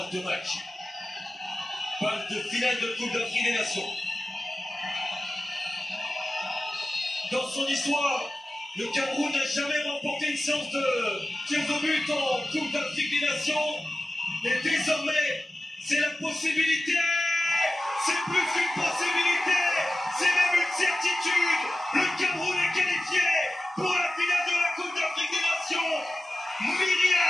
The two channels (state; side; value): normal; both; correlation 0.95